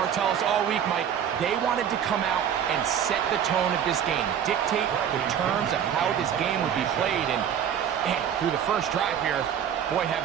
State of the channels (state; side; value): quieter; left; 8.9 dB